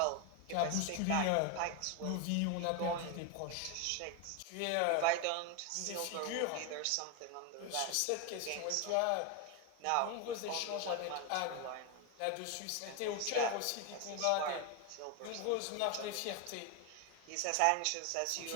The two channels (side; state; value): both; different; correlation 0.01